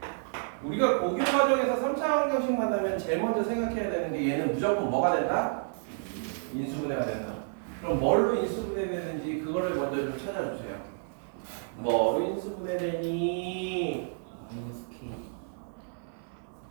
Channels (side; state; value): left; silent; digital silence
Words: 우리가 고교 과정에서 3차 방정식 만나면 제일 먼저 생각해야 되는 게 얘는 무조건 뭐가 된다? 인수분해가 된다. 그럼 뭘로 인수분해되는지 그거를 먼저 좀 찾아주세요. 뭐로 인수분해되니?